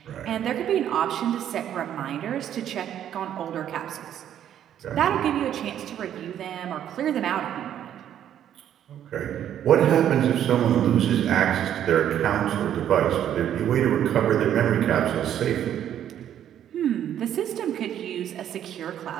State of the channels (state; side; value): quieter; left; 10.4 dB